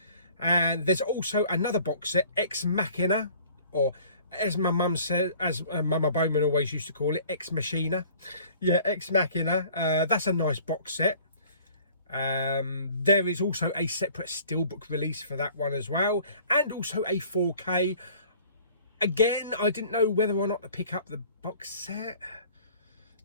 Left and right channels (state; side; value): inverted; both; correlation -0.51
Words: And there's also another box set, Ex Machina, or as my mum said, as Mama Bowman always used to call it, Ex Machina. Yeah, Ex Machina. That's a nice box set. There is also a separate steelbook release for that one as well, and also a 4K. Again, I didn't know whether or not to pick up the box set,